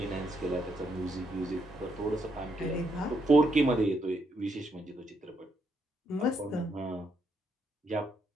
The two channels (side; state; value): both; normal; correlation 0.76